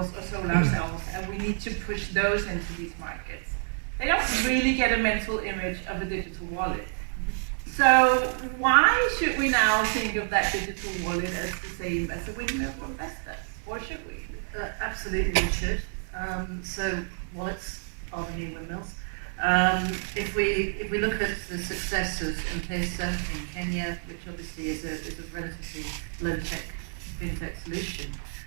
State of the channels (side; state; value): left; silent; 59 dB below the other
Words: or solar cells, and we need to push those into these markets. They don't really get a mental image of a digital wallet. So why should we now think of that digital wallet as the same as a windmill for investors? Or should we? Absolutely we should. So wallets are the new windmills. If we look at the success of M-Pesa in Kenya, which obviously is a relatively low-tech fintech solution,